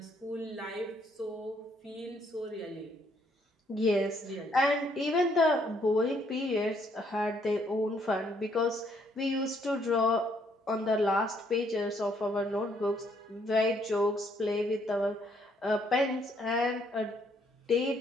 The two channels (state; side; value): normal; both; correlation 0.69